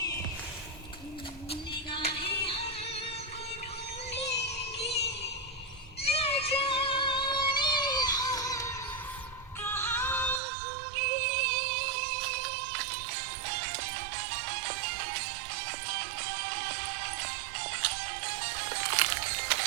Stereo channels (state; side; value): drops out; left; at 10.4 s